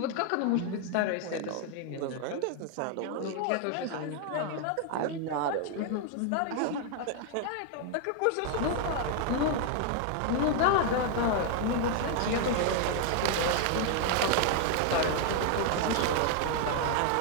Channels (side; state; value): both; different; correlation 0.00